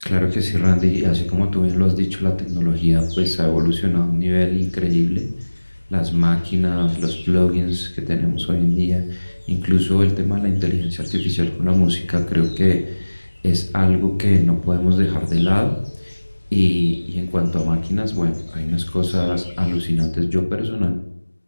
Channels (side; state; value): both; inverted; correlation -1.00